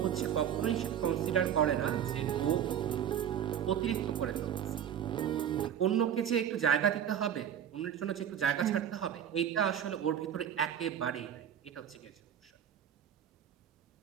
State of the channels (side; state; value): left; quieter; 9.4 dB